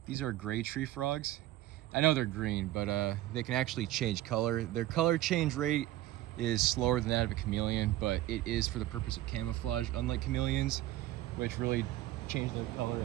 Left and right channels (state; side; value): quieter; left; 15.0 dB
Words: gray tree frogs. I know they're green, but they can actually change color. Their color change rate is slower than that of a chameleon, but it is for the purpose of camouflage, unlike chameleons, which really change their color